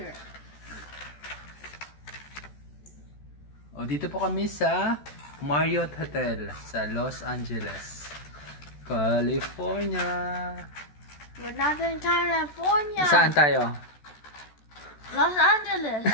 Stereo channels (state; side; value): late; right; 14 ms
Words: O, dito po kami sa Marriott Hotel sa Los Angeles, California. We're not in California. Saan tayo? Los Angeles.